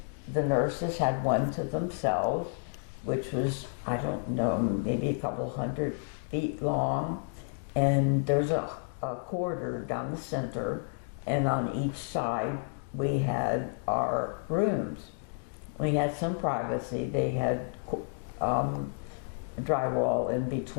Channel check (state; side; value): silent; right; digital silence